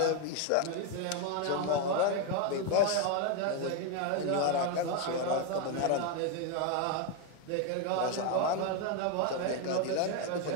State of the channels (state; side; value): different; both; correlation 0.01